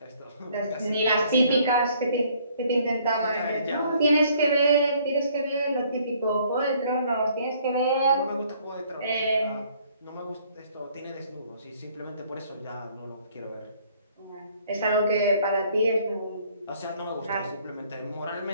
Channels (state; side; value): inverted; both; correlation -0.62